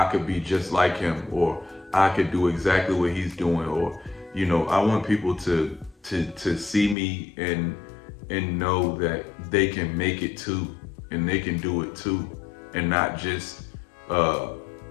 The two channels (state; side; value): drops out; right; at 7.0 s